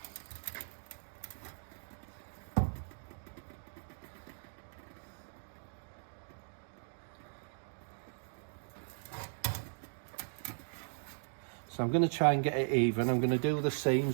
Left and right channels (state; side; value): silent; left; digital silence